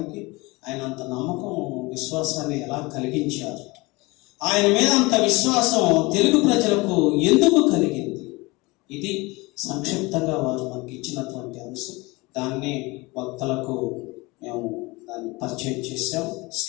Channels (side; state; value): right; quieter; 23.8 dB